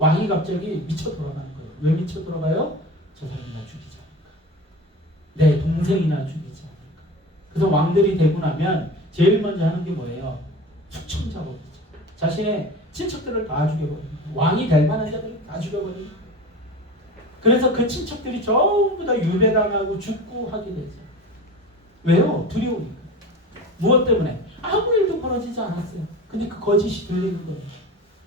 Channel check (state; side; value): normal; both; correlation 0.34